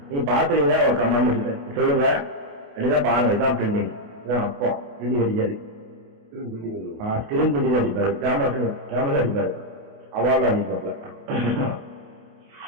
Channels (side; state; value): left; late; 28 ms